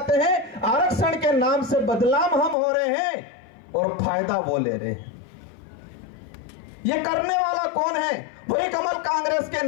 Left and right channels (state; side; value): drops out; right; at 2.6 s